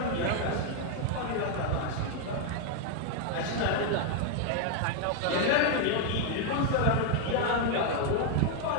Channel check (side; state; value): both; different; correlation 0.00